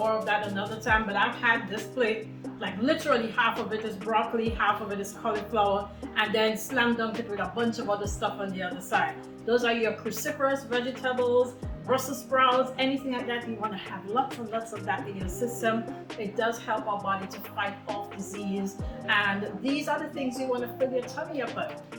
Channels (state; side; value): identical; both; correlation 1.00